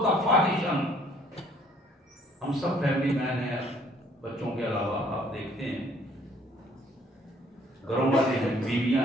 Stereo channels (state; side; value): normal; both; correlation 0.60